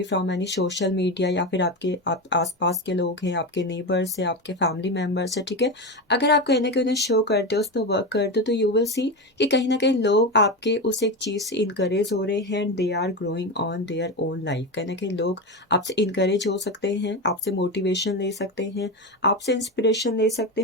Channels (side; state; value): both; normal; correlation 0.18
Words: from any social media, या फिर आप आसपास के लोग हैं, आपके नेबर्स हैं, आपके फैमिली मेम्बर्स हैं, ठीक है। अगर आप कहीं ना कहीं उन्हें शो करते हो, उस पर वर्क करते हो, तो यू विल सी कि कहीं ना कहीं लोग आपके उस एक चीज़ से इनकरेज हो रहे हैं and they are growing on their own life. कहीं ना कहीं लोग आपसे इनकरेज हो सकते हैं, आपसे मोटिवेशन ले सकते हैं, आपसे इंस्पिरेशन ले सकते